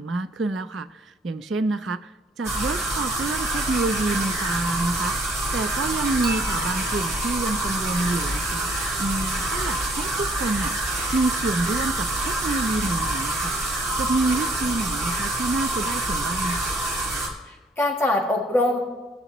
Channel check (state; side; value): normal; both; correlation 0.62